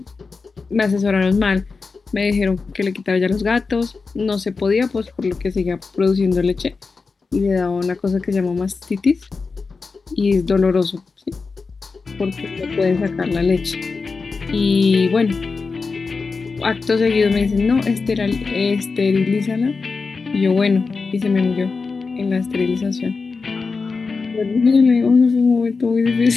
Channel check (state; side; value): quieter; right; 4.5 dB